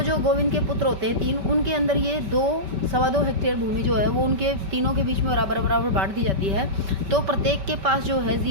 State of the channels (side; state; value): left; late; 5.2 ms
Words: जो गोविंद के पुत्र होते हैं 3, उनके अंदर ये 2.25 हेक्टेयर भूमि जो है वो उनके तीनों के बीच में बराबर बांट दी जाती है। तो प्रत्येक के पास जो है